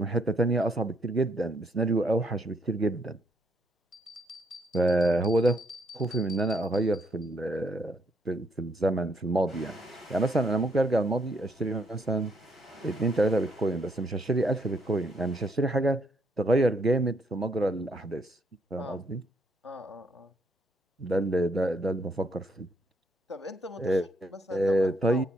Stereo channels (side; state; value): both; normal; correlation 0.72